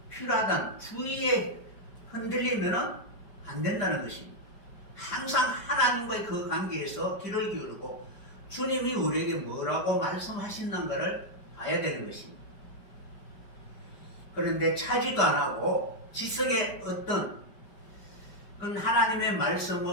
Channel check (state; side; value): late; right; 5.1 ms